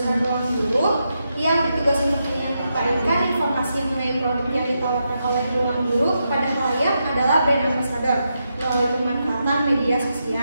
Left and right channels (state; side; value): inverted; both; correlation -0.84